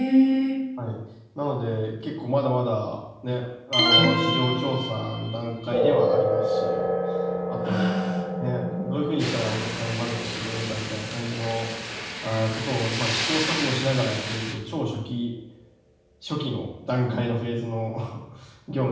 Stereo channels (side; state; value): both; identical; correlation 1.00